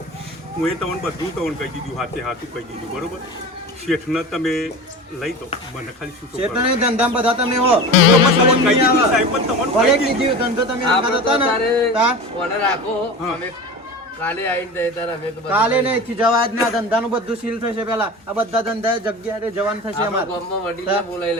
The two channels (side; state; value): both; normal; correlation 0.32